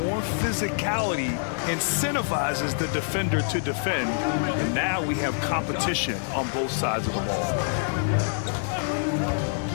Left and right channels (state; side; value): silent; right; 61 dB below the other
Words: more physicality incentivizes the defender to defend, and now we have competition on both sides of the ball.